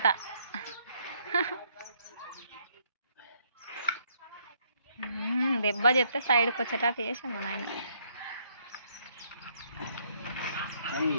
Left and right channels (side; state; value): both; inverted; correlation -0.69